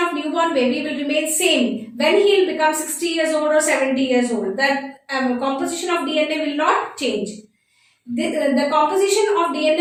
newborn baby will remain same when he will become 60 years old or 70 years old. That composition of DNA will not change. The composition of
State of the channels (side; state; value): both; identical; correlation 1.00